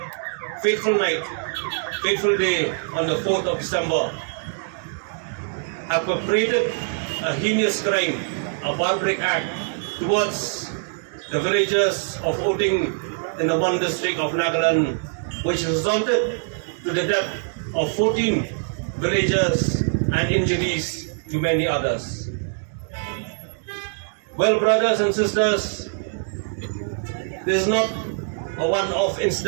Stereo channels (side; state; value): left; silent; digital silence